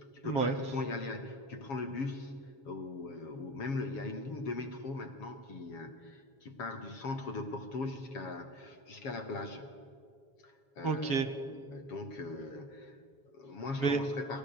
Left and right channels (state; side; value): late; right; 7.3 ms